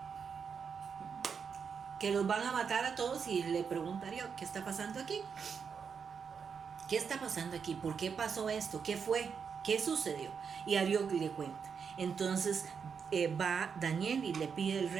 que los van a matar a todos, y le pregunta a Dios, ¿qué está pasando aquí? ¿Qué está pasando aquí? ¿Por qué pasó esto? ¿Qué fue? ¿Qué sucedió? Y a Dios le cuenta. Entonces va Daniel y le pide al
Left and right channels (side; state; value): left; quieter; 6.3 dB